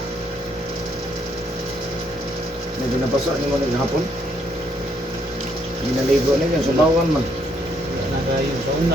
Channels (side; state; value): both; normal; correlation 0.71